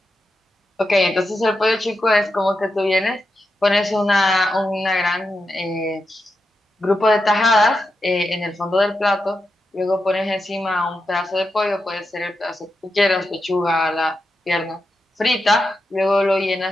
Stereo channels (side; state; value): both; normal; correlation 0.88